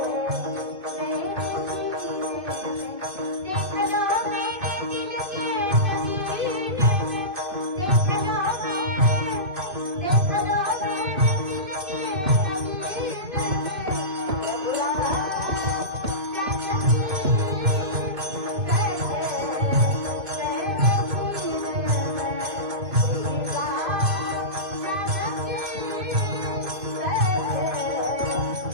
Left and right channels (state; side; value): late; left; 2.5 ms